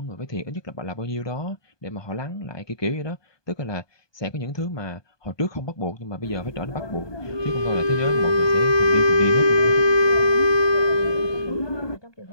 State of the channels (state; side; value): late; right; 1.2 ms